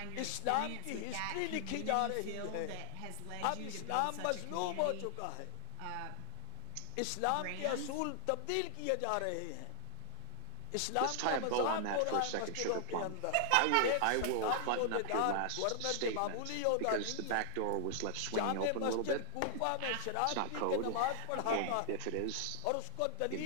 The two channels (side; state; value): both; different; correlation 0.00